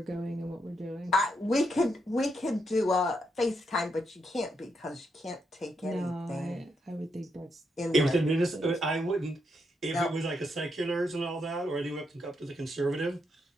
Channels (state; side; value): normal; both; correlation 0.80